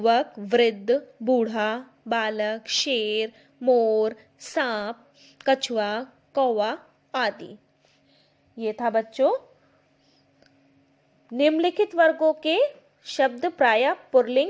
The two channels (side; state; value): both; identical; correlation 1.00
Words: वृद्ध, बूढ़ा, बालक, शेर, मोर, सांप, कछुआ, कौवा आदि। ये था बच्चों निम्नलिखित वर्गों के शब्द प्रायः